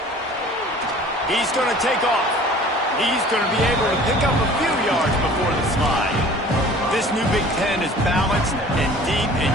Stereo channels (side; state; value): both; normal; correlation 0.47